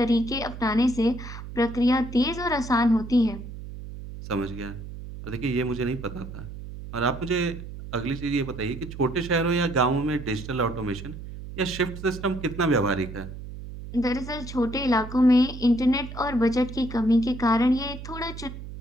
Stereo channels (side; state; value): right; noise; hum, 11 dB below the sound